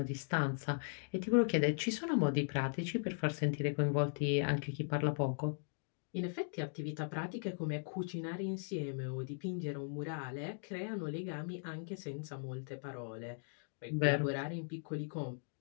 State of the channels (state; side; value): silent; right; digital silence